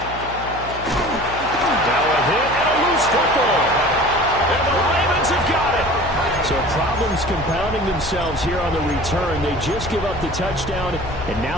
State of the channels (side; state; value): left; noise; hum, 13 dB below the sound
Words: Now a hit and a loose football. And the Ravens have got it. So problems compounding themselves here on the return. They just give up the touchdown, and